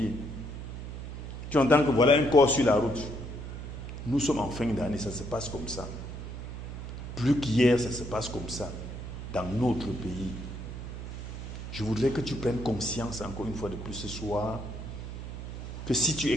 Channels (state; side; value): noise; right; hum, 8 dB below the sound